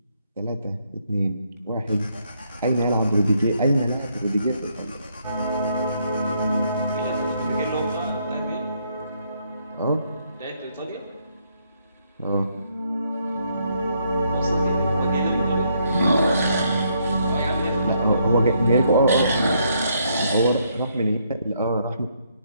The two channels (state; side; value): inverted; both; correlation -0.73